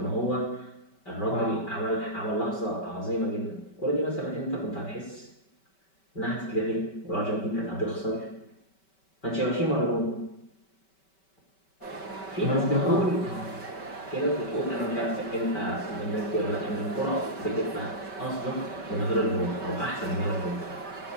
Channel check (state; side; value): late; right; 5.2 ms